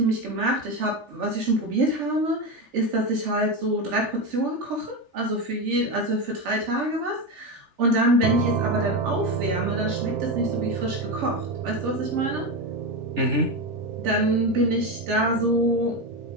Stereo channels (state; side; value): late; left; 3.4 ms